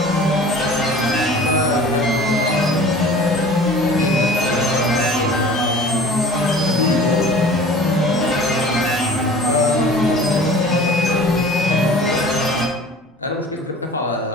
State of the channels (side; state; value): both; normal; correlation 0.43